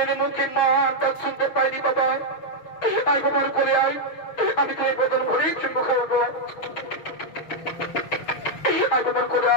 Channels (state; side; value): late; right; 6.2 ms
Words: মুখে মা ডাক শুনতে পাইনি বাবা। আই বাবার করে আয়, আমি তো এই বদল ঘরে চুম্ব খাওয়াবো। আই বাবার করে